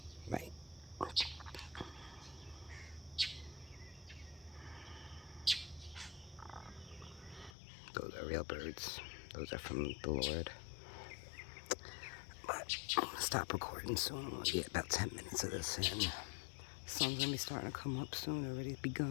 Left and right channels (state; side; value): drops out; right; at 7.6 s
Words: Right. Those are real birds. Those are from the Lord. But I'm going to stop recording soon. I'm going to get about 10 minutes of this in. The sun's going to be starting to come up soon. Already